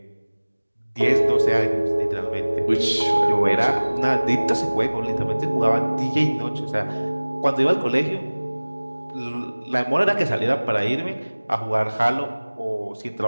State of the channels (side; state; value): both; inverted; correlation -1.00